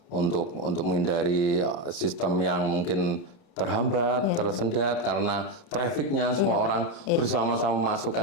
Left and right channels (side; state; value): right; late; 29 ms